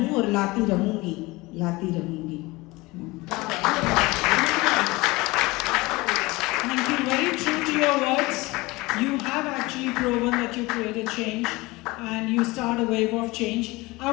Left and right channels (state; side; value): quieter; right; 22.2 dB